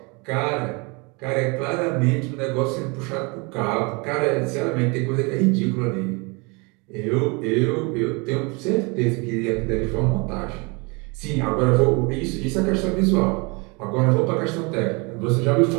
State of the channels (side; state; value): left; quieter; 29.4 dB